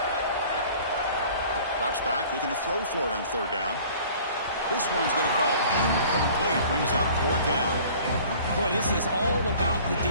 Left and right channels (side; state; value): both; inverted; correlation -0.48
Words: Drops back, looking to throw for it on 3rd down. This one's going to fall incomplete. Brings up 4th down. Boy, this is all about the